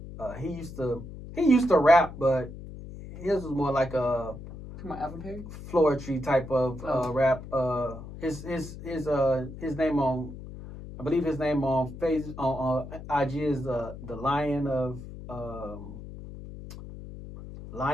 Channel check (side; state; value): left; noise; hum, 12 dB below the sound